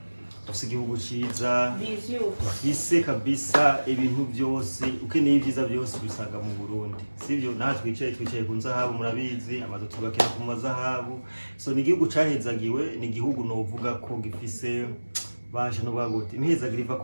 dufise igihugu ciza, dufise kabisa ibintu byose, ukeneye ibyiza byose bisaga mu Burundi. Sivyo natwe twicaye ku nzahabu murabizi, amazu tubakira ku mazahabu. So ni igihugu cahezagiwe, ni igihugu novuga ko gifise basha no bagote imhezagira iva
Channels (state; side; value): inverted; both; correlation -1.00